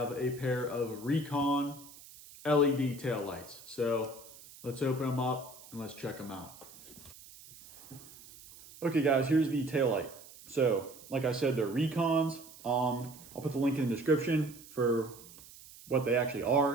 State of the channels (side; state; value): right; noise; hiss, 19 dB below the sound